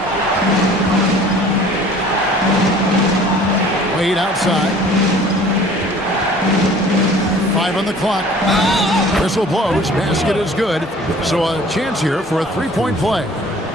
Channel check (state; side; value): normal; both; correlation 0.49